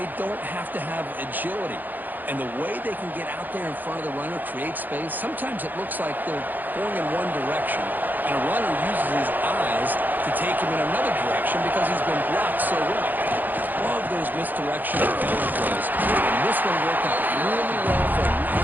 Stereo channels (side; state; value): left; late; 0.086 ms